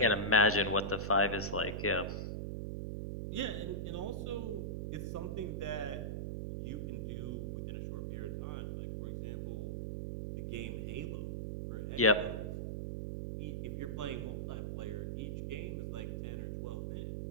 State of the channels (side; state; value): right; noise; hum, 3 dB below the sound